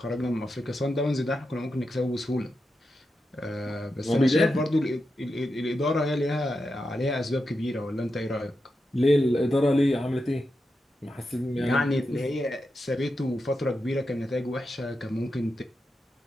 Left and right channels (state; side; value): normal; both; correlation 0.88